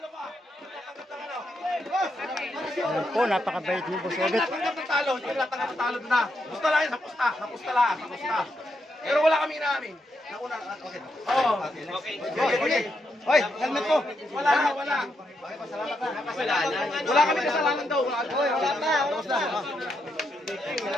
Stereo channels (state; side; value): normal; both; correlation 0.81